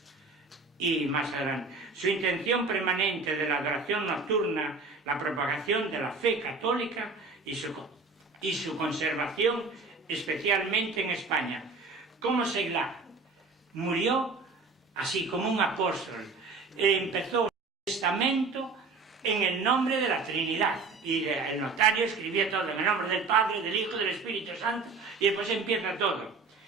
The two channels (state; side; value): quieter; left; 4.2 dB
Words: Y más adelante, su intención permanente de la adoración nocturna, la propagación de la fe católica y su conservación, especialmente en España. Como Seglar murió así como un apóstol, empezó el testamento en el nombre de la Trinidad, y el notario escribía todo en el nombre del Padre, del Hijo y del Espíritu Santo, y después empieza todo.